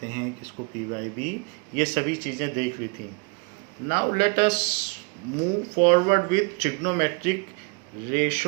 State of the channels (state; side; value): quieter; left; 31.9 dB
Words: हैं, किसको P बाई B, ये सभी चीज़ें देख ली थी। Now let us move forward with trigonometric